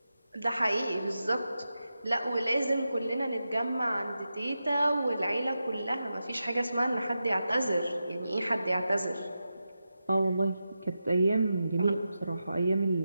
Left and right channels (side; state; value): both; inverted; correlation -0.90